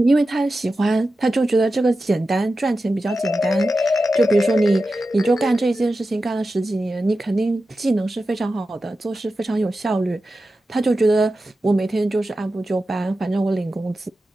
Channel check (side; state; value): both; normal; correlation 0.92